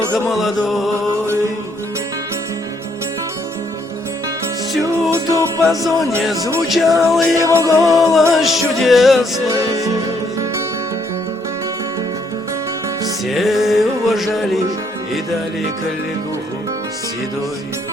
молодой. Всюду по зоне звучал его голос чудесный. Все уважали и дали коллегуху седой.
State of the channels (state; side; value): normal; both; correlation 0.70